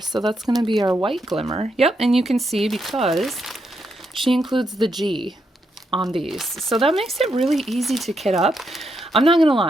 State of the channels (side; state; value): both; normal; correlation 0.80